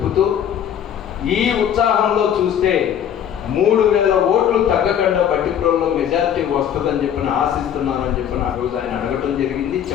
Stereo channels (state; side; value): quieter; right; 9.4 dB